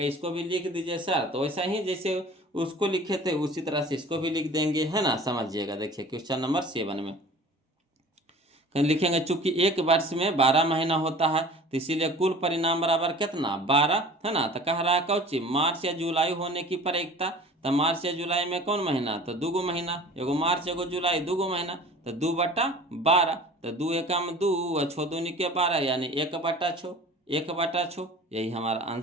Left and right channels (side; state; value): both; normal; correlation 0.44